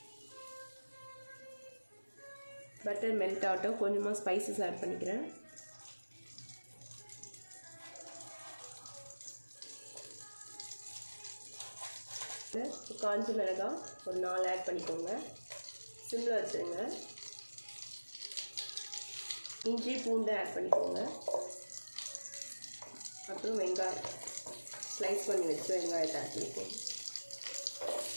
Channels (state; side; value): inverted; both; correlation -1.00